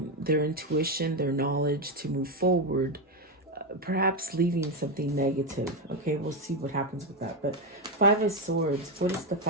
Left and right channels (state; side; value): normal; both; correlation 0.08